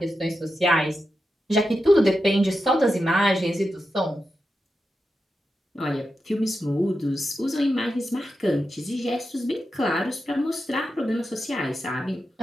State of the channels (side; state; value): both; normal; correlation 0.89